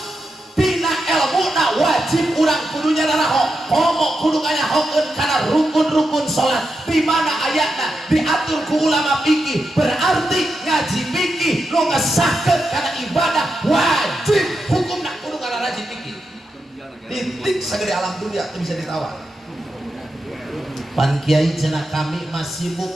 dina ilmuna wajib urang kudunya naraho. Komo kudu ngayahokeun kana rukun-rukun salat. Di mana ayatna diatur ku ulama fikih, berarti ngaji fikih nu ngesahkeun kana ibadah wajib hukumna kudu ngararaji fikih. Titik sagede alam dunia teu bisa ditawar. Pan kiai cenah kami masih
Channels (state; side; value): normal; both; correlation 0.87